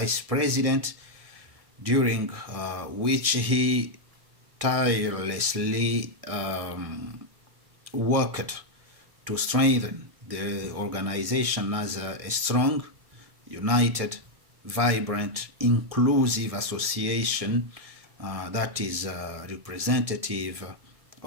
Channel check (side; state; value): left; late; 1.6 ms